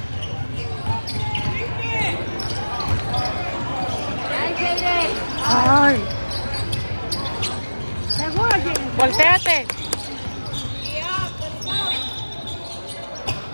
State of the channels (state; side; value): inverted; both; correlation -1.00